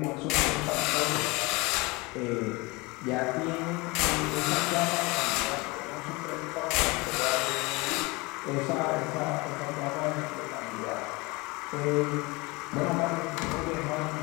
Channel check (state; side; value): quieter; right; 25.0 dB